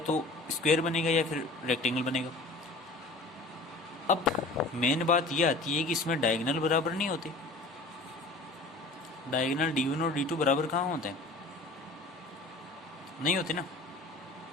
स्क्वायर बनेगा, या फिर रेक्टेंगल बनेगा। अब मेन बात यह आती है कि इसमें डायगोनल बराबर नहीं होते। डायगोनल D1 और D2 बराबर कहाँ होते हैं, नहीं होते ना।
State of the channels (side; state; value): right; quieter; 3.1 dB